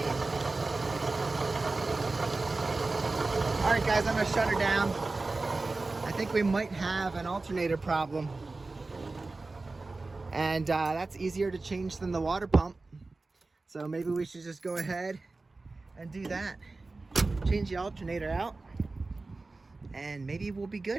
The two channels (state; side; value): quieter; left; 3.5 dB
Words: mean? Alright guys, I'm going to shut her down. I think we might have an alternator problem. And that's easier to change than the water pump. So maybe we should just go ahead and do that. Change the alternator out. And maybe we'll be